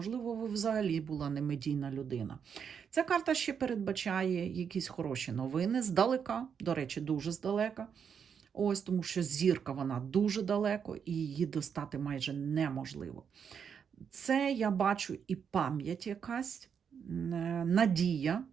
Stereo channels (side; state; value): left; quieter; 7.2 dB